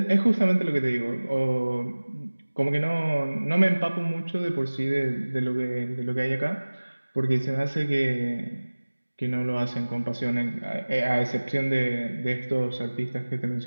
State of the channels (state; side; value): inverted; both; correlation -1.00